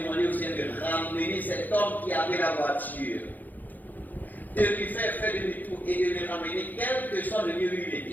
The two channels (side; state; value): right; late; 0.084 ms